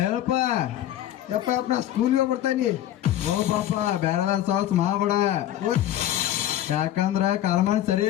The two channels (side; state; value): right; quieter; 12.6 dB